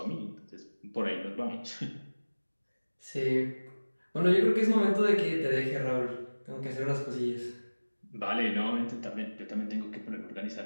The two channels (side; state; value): both; inverted; correlation -1.00